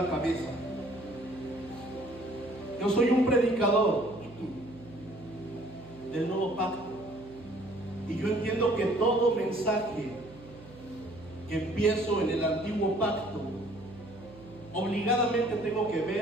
cabeza. Yo soy un predicador del nuevo pacto y yo entiendo que todo mensaje que empiezo en el antiguo pacto obligadamente tengo que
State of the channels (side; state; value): right; noise; hum, 18 dB below the sound